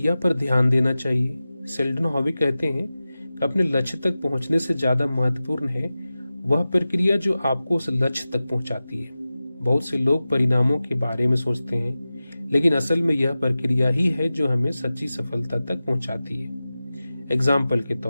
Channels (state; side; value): inverted; both; correlation -0.95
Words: पर ध्यान देना चाहिए। सेल्डन हाउ कहते हैं कि अपने लक्ष्य तक पहुंचने से ज्यादा महत्वपूर्ण है वह प्रक्रिया जो आपको उस लक्ष्य तक पहुंचाती है। बहुत से लोग परिणामों के बारे में सोचते हैं, लेकिन असल में यह प्रक्रिया ही है जो हमें सच्ची सफलता तक पहुंचाती है। एग्जाम्पल के